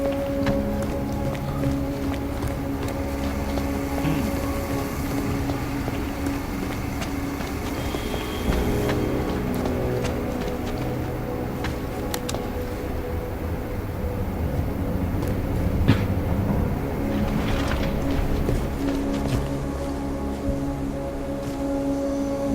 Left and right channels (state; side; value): identical; both; correlation 1.00